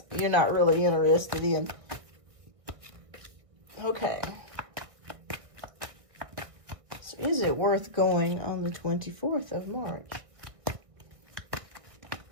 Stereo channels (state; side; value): late; left; 1.6 ms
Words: you're not really interested in. Okay. So is it worth going on the 24th of March?